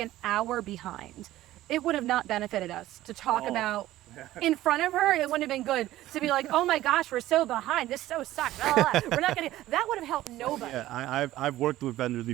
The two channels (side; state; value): left; quieter; 15.2 dB